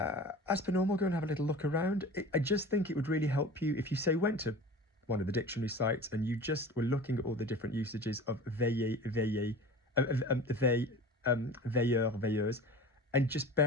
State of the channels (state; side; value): normal; both; correlation 0.37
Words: per normal, go and have a little look around. I just think it would really help you if you, say, went to one of the dictionary sites and you just were looking at all the different usages of veiller, veiller, veilleur, veilleuse, and just